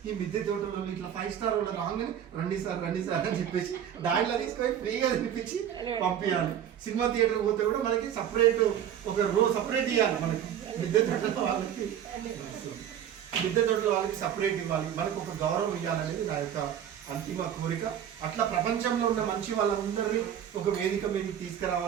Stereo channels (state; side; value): quieter; left; 9.7 dB